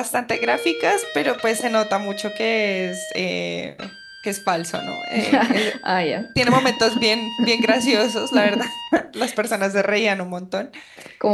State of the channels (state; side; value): identical; both; correlation 1.00